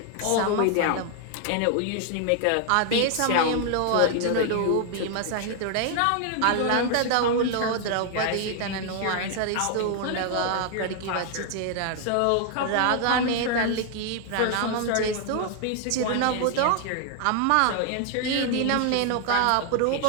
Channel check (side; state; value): both; different; correlation 0.00